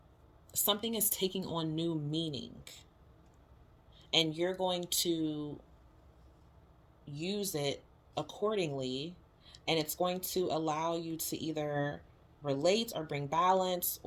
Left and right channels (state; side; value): identical; both; correlation 1.00